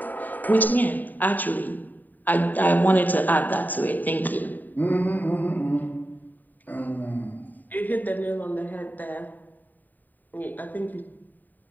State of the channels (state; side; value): late; right; 0.087 ms